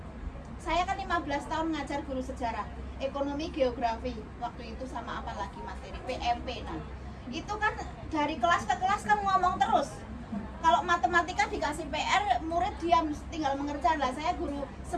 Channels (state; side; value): identical; both; correlation 1.00